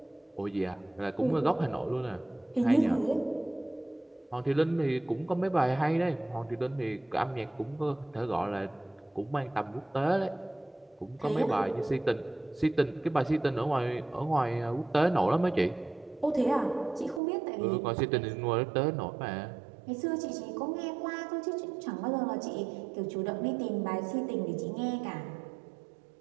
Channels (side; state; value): left; drops out; at 17.2 s